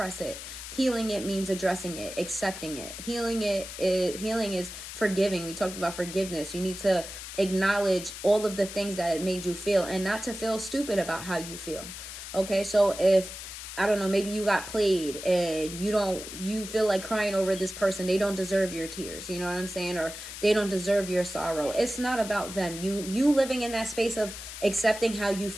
it. Healing it means addressing it, accepting it. Healing is forgiving. We talked about forgiveness. You need to acknowledge all of the things that it made you feel and not to feel stupid about how you feel. Okay, so if I don't know, maybe you got played and you feel like crying over this person. They don't deserve your tears. You know what I'm saying? Or they don't deserve your sorrow. It's not about them. You living in that space of accepting how you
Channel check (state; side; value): noise; left; hiss, 10 dB below the sound